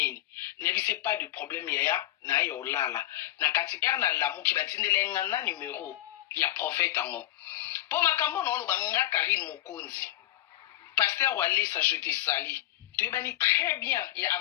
ne bisi pas de problème ya na yo lala na kati era na lamu ki batindele ngana numéro ya prophète ango po makambo no lo banga Karine Mokonzi pasteur Wale sa je te sali tu bani très bien ya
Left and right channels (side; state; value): right; quieter; 15.0 dB